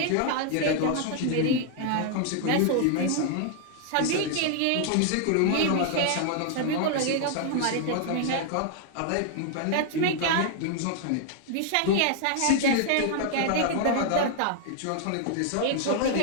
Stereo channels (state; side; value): different; both; correlation 0.00